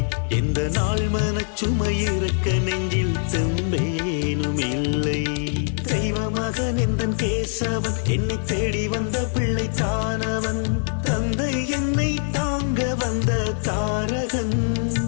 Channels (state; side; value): silent; right; 63 dB below the other